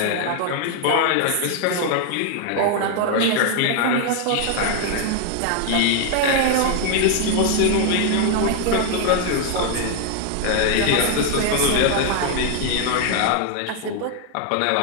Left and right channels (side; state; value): both; different; correlation 0.00